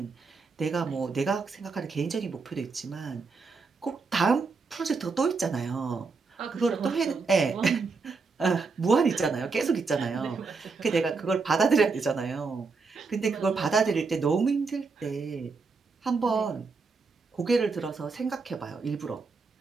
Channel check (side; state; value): left; quieter; 4.4 dB